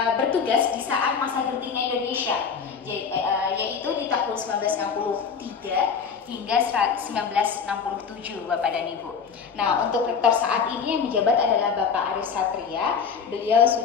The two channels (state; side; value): quieter; right; 6.1 dB